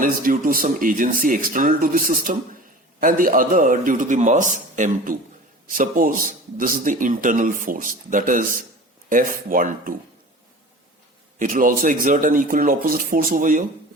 is due to some agency external to the system and the other due to the mass m2. Suppose this is the internal force, that is F12. It will also exert an equal and opposite force over here.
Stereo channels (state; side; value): normal; both; correlation 0.39